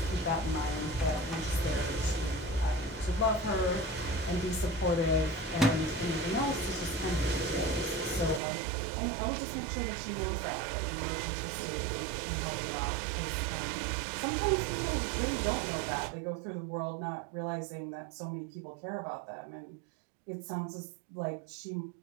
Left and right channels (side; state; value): left; drops out; at 8.4 s